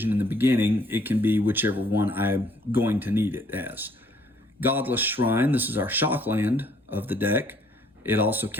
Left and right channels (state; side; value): normal; both; correlation 0.63